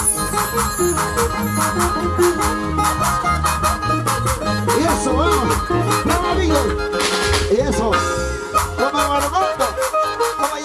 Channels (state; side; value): identical; both; correlation 1.00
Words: Y eso, vamos. Vamos, amigo. Y eso. Vamos a Guanajuato. Vamos a